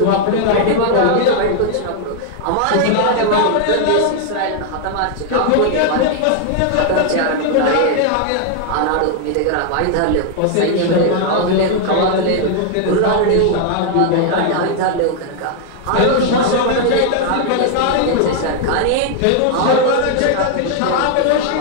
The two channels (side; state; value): both; different; correlation 0.00